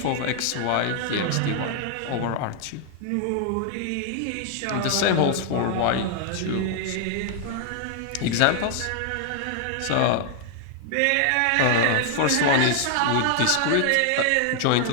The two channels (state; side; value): different; both; correlation 0.00